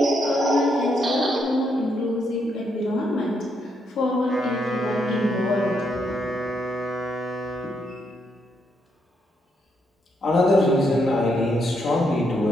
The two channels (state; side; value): normal; both; correlation 0.77